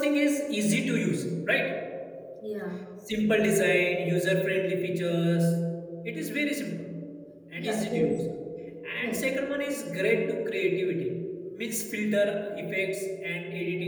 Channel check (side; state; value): both; identical; correlation 1.00